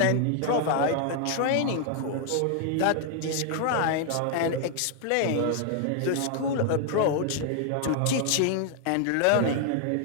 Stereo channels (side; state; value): both; different; correlation 0.00